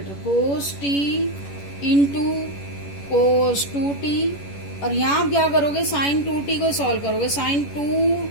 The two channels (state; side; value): late; right; 11 ms